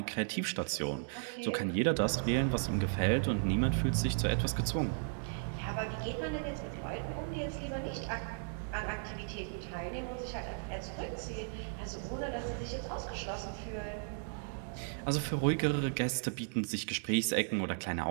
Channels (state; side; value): silent; left; digital silence